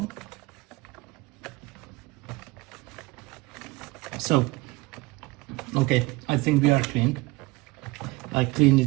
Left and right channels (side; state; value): left; quieter; 21.9 dB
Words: So, okay, I think we are clean. I cleaned